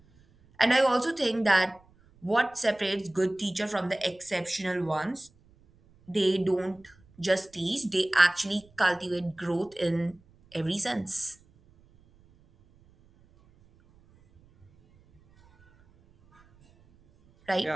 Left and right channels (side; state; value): right; noise; rumble, 30 dB below the sound